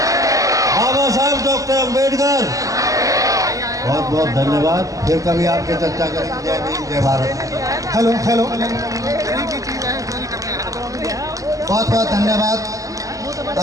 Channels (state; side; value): late; left; 0.16 ms